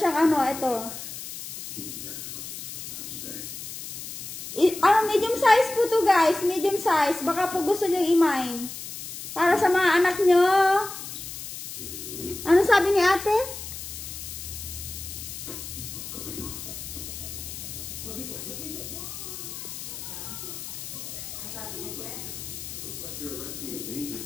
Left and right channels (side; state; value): left; noise; hiss, 9 dB below the sound